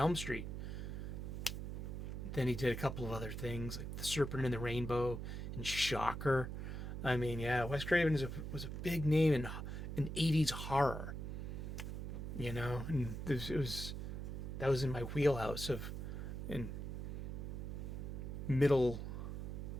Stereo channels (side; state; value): right; noise; hum, 5 dB below the sound